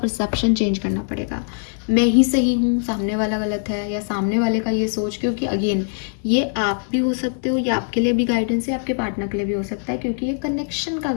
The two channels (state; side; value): silent; right; digital silence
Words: चेंज करना पड़ेगा। मैं ही सही हूँ, सामने वाला गलत है, या सामने वाले का ये सोच, क्योंकि अगेन ये आप भी हो सकते हो, ये आपके लिए भी गाइडेंस है, आपके पार्टनर के लिए भी हो सकता है, क्योंकि ये कनेक्शन का